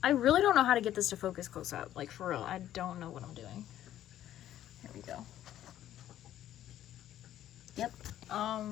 I really don't know how to get this to focus close up. Like, for real, I don't know what I'm doing. Here we go. Yep.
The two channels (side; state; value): right; quieter; 12.2 dB